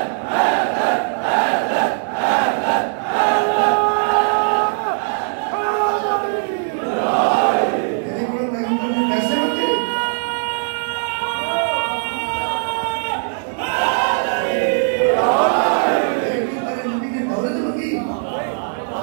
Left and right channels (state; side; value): silent; left; 66 dB below the other